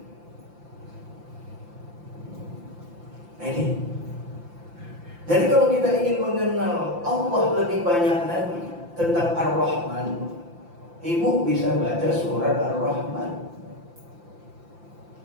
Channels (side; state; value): left; late; 5.8 ms